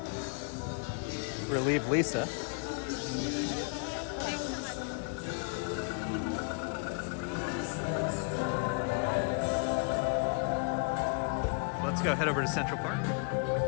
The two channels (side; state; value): right; quieter; 36.6 dB